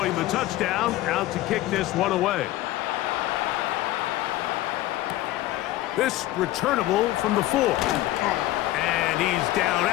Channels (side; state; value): right; quieter; 15.8 dB